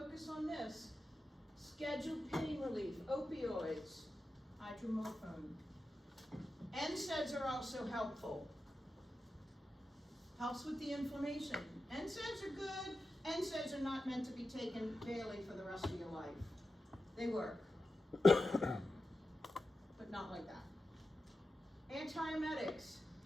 on this. Scheduled pain relief, opioids, hydromorphone. NSAIDs are also helpful. Helps with the inflammation. NSAIDs are good. NSAIDs are not meant to be taken daily for the rest of your life. They work, but not like that. Antiemetics,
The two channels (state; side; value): normal; both; correlation 0.91